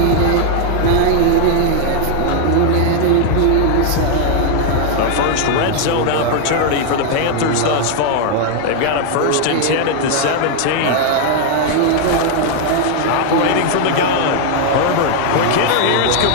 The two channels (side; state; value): both; different; correlation 0.00